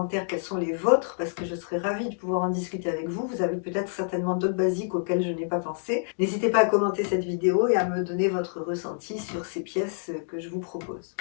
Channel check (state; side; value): silent; right; digital silence